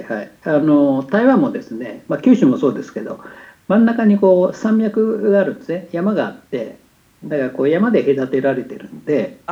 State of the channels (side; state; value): both; identical; correlation 1.00